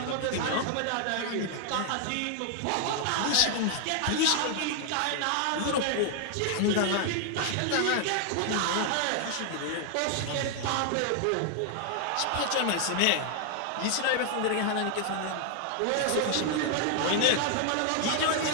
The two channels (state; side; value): different; both; correlation 0.00